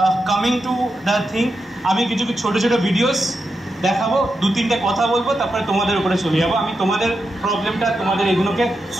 coming to the thing, আমি কিছু ছোটো ছোটো ভিডিওস দেখাবো, 2-3টে কথা বলবো, তারপরে তোমাদের উপরে চলে যাবো। আমি তোমাদের প্রবলেমটা, তোমাদের এগুলোকে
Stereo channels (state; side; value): normal; both; correlation 0.87